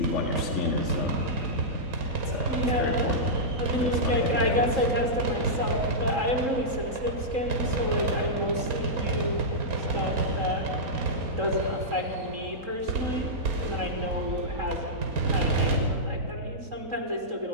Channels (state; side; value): late; left; 3.7 ms